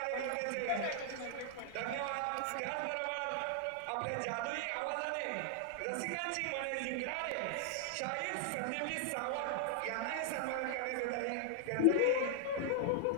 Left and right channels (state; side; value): different; both; correlation 0.00